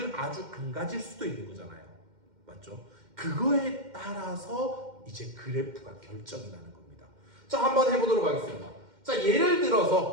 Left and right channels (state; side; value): late; left; 2.1 ms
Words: 아주 안 가질 수도 있는 거잖아요. 맞죠? 그거에 따라서 이제 그래프가 결정이 나는 겁니다. 자, 한번 해보도록 하겠습니다. 자, 예를